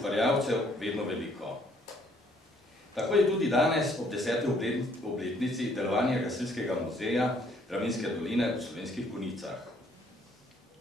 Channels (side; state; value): both; normal; correlation 0.65